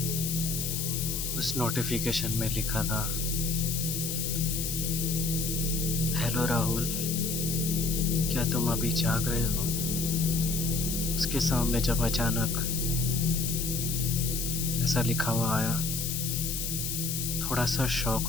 उस नोटिफिकेशन में लिखा था, हेलो राहुल, क्या तुम अभी जाग रहे हो? उसके सामने जब अचानक ऐसा लिखा हुआ आया, थोड़ा सा शॉक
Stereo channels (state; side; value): noise; left; hiss, 2 dB below the sound